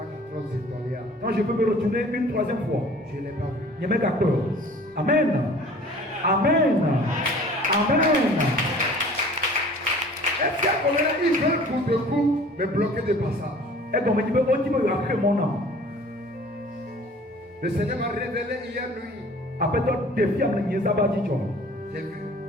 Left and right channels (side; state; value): both; normal; correlation 0.48